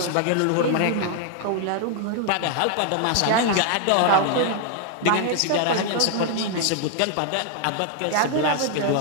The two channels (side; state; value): both; different; correlation 0.00